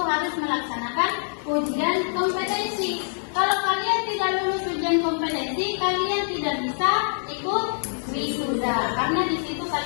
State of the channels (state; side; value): silent; right; 61 dB below the other